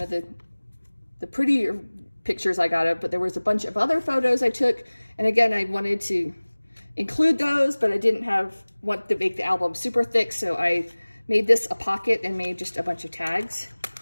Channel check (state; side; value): inverted; both; correlation -1.00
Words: of the prettier pictures I got of, but there was a bunch of other photos I took. And again, I wanted to include those, but I didn't want to make the album super thick, so I made this a pocket and made just a bunch of tags